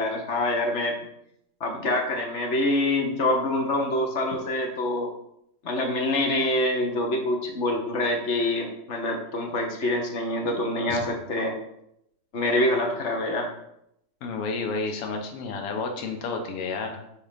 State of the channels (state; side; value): late; right; 3.4 ms